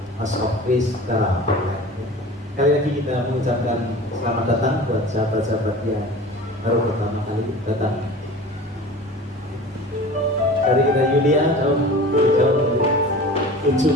House of Praise secara online. Kali lagi kita mengucapkan selamat datang buat sahabat-sahabat yang baru pertama kali datang. Dari kita Yulia jauh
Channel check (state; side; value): normal; both; correlation 0.39